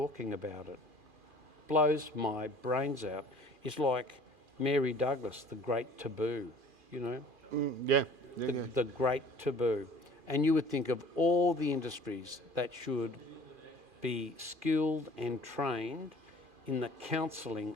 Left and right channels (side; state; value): left; late; 2.4 ms